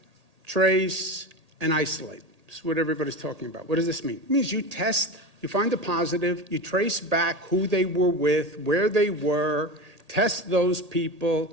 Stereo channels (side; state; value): left; late; 1.8 ms